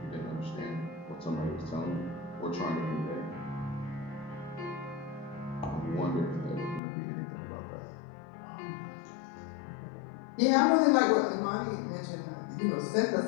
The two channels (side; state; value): right; drops out; at 6.8 s